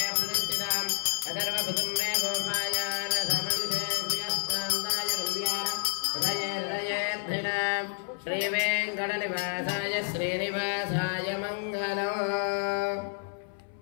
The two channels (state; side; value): silent; right; 58 dB below the other